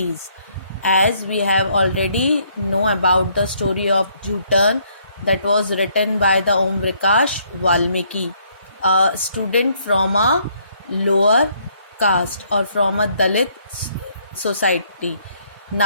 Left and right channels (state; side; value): inverted; both; correlation -0.68